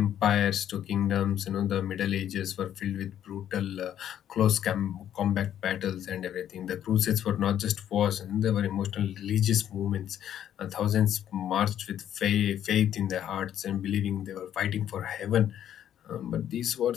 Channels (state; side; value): quieter; right; 10.5 dB